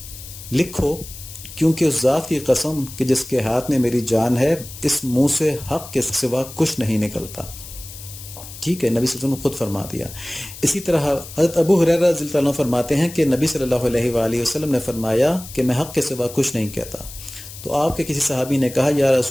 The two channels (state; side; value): noise; left; hiss, 14 dB below the sound